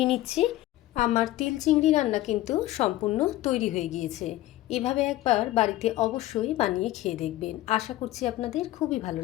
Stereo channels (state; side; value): quieter; right; 15.5 dB